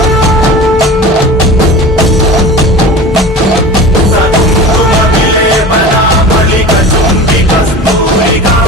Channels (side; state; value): both; normal; correlation 0.36